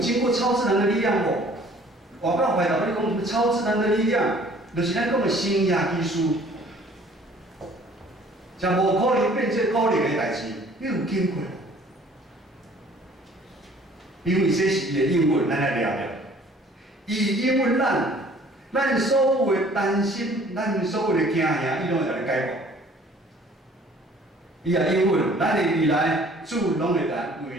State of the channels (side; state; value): both; normal; correlation 0.54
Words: 过超自然的力量无？我告回答你讲什么超自然的力量，就是咱讲的新约基书，将无可能变做可能的代志，你有经过。因为这是伊的应允，咱来聊聊。伊应允咱所有的担心，咱所有的惊吓，伊拢会甲你解决。伊也应允，咱的未来主拢会来为